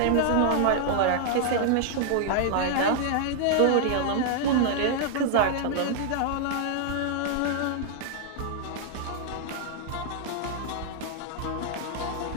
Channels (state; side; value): different; both; correlation -0.01